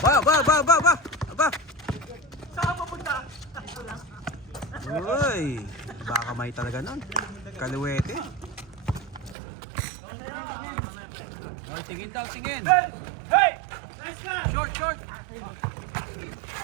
Aba. Saan pupunta? Uy, baka may talaga nun. Kaluwete. Oy, tingin daw, tingin. Hey! Nice ka! Short.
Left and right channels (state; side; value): drops out; left; at 9.3 s